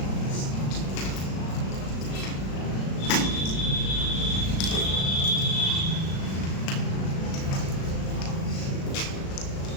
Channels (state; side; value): late; right; 36 ms